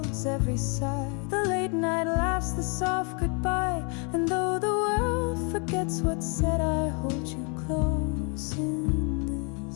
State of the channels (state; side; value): quieter; right; 36.4 dB